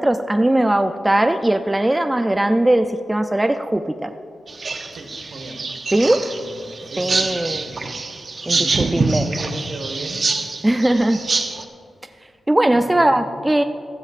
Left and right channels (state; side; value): normal; both; correlation 0.97